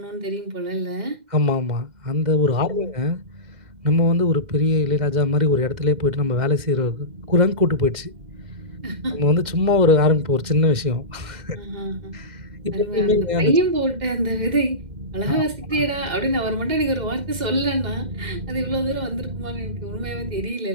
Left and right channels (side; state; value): left; late; 2.0 ms